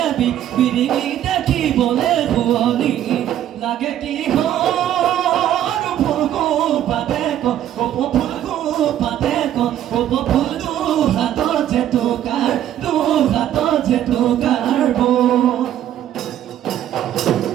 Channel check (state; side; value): quieter; left; 11.4 dB